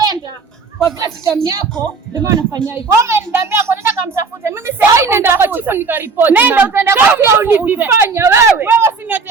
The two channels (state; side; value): quieter; left; 4.6 dB